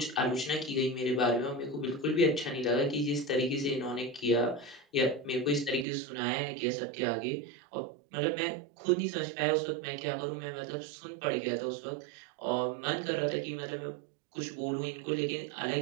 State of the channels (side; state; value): left; drops out; at 5.9 s